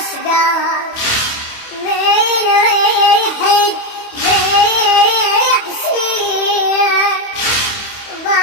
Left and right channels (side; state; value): right; late; 28 ms